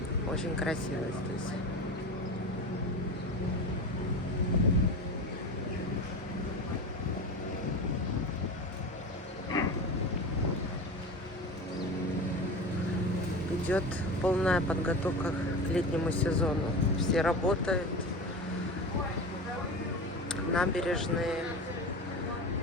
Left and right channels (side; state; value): both; normal; correlation 0.28